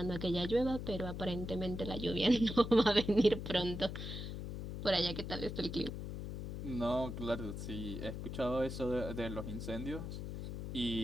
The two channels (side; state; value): left; noise; hum, 6 dB below the sound